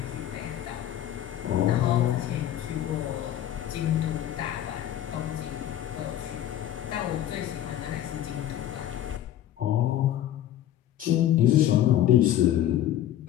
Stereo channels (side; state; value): right; quieter; 12.0 dB